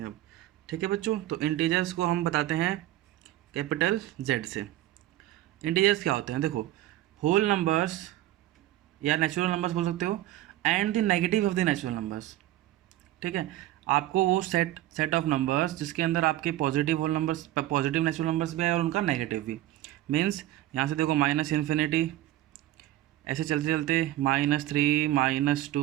हैं अब। ठीक है बच्चों, तो इंटीजर्स को हम बताते हैं कैपिटल जेड से। इंटीजर्स क्या होते हैं? देखो, होल नंबर्स या नेचुरल नंबर्स बोल सकते हो, and the negative of the natural numbers. ठीक है, आपको वो सेट ऑफ नंबर्स जिसके अंदर आपके positive whole numbers, positive natural numbers भी है और उनका नेगेटिव भी। मीन्स यहाँ से देखो, माइनस इन्फिनिटी, ऐसे चलते चलते -3,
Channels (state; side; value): quieter; left; 14.7 dB